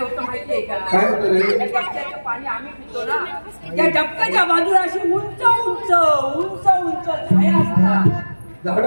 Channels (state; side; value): inverted; both; correlation -1.00